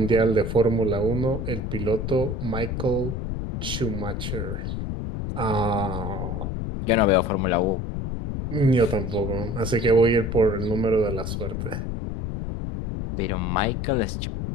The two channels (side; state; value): left; noise; rumble, 3 dB below the sound